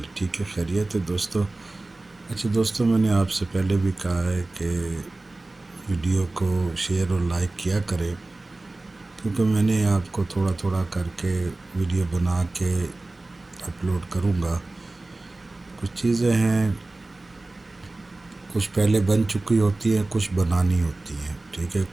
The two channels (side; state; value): left; quieter; 3.0 dB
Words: ٹھیک ہے، خیریت ہے دوستو؟ اچھا دوستو، میں نے آپ سے پہلے بھی کہا ہے کہ ویڈیو کو شیئر اور لائک کیا کریں، کیونکہ میں نے آپ کو تھوڑا تھوڑا کر کے ویڈیو بنا کے اپلوڈ کروں گا۔ کچھ چیزیں ہیں، کچھ پہلے بن چکی ہوتی ہیں، کچھ بنانی ہوتی ہیں، ٹھیک ہے؟